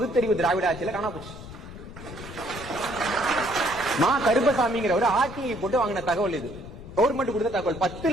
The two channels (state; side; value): noise; left; rumble, 14 dB below the sound